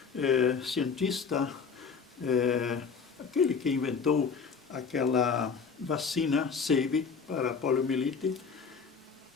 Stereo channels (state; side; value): quieter; right; 5.6 dB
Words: cientista, aquele que inventou aquela vacina SAVE para a poliomielite,